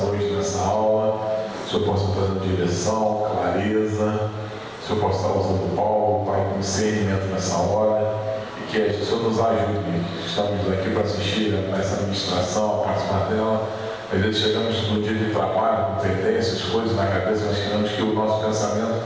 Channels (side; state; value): both; identical; correlation 1.00